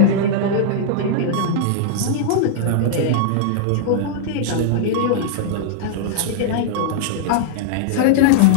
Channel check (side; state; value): both; different; correlation -0.02